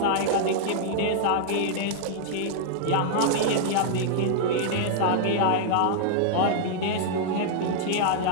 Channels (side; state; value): both; different; correlation -0.01